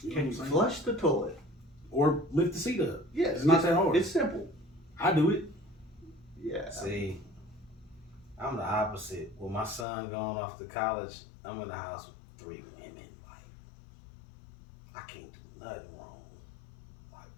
You know Can what you I'm saying? flush the toilet? Or lift the seat up. Yeah, It's not that hard. It's simple. I do it. Yeah. See, I'm the opposite. With my son going off to college, I'm in the house with 3 women. Like, I can't do nothing wrong.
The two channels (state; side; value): drops out; right; at 9.9 s